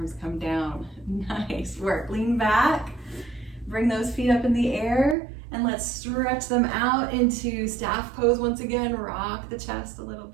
come down. Nice work. Lean back, bring those feet up in the air, and let's stretch them out into staff pose once again. Rock the chest a little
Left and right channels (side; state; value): left; drops out; at 5.2 s